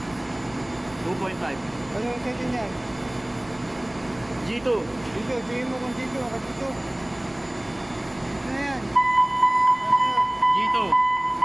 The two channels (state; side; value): noise; right; rumble, 24 dB below the sound